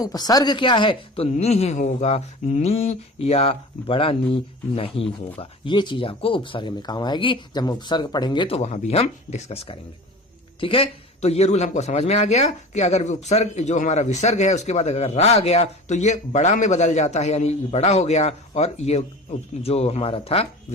क्या है, तो नी ही होगा, नी या बड़ा नी नहीं होगा। ये चीज आपको उपसर्ग में काम आएगी, जब हम उपसर्ग पढ़ेंगे तो वहां भी हम डिस्कस करेंगे। ठीक है। तो ये रूल हमको समझ में आ गया कि अगर उपसर्ग जो हमारा विसर्ग है उसके बाद अगर रा आ गया तो ये बड़ा में बदल जाता है, यानी बड़ा हो गया और ये जो हमारा था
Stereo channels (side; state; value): both; normal; correlation 0.36